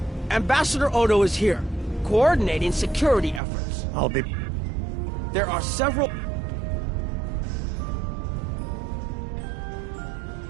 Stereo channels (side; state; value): left; drops out; at 3.4 s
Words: Ambassador Odo is here, coordinating security efforts. I'll be... There are several...